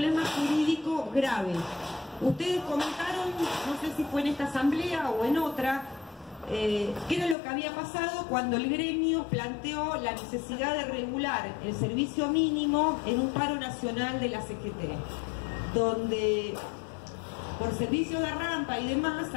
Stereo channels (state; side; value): drops out; right; at 7.4 s